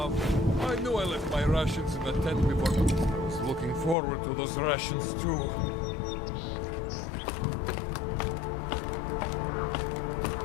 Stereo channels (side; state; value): right; drops out; at 4.0 s